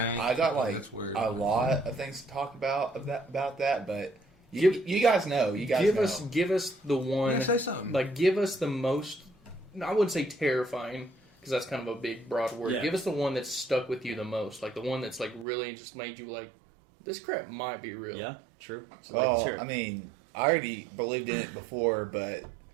I got like That's weird. a lot of things to talk about that, but you guys know. You guys know. Give us the one. Yeah, say something. Like, give us the most. I wouldn't say terrifying because that's kind of a big, broad word. Yeah. Give us the one that's stuck with you the most. Like the one that's like really just made you like, this crap might be real. Yeah, true. So, Well, sure. I mean, I already believed in it before, but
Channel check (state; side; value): drops out; left; at 15.5 s